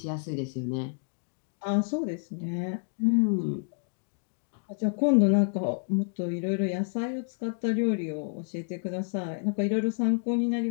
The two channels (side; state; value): right; silent; digital silence